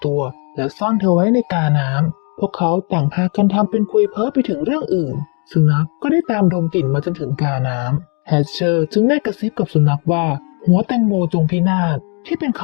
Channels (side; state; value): right; quieter; 36.1 dB